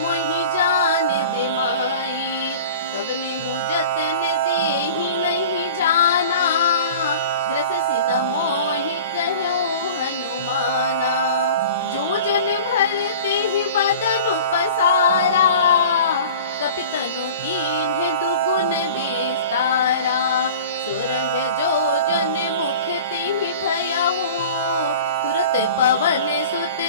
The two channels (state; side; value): inverted; both; correlation -0.39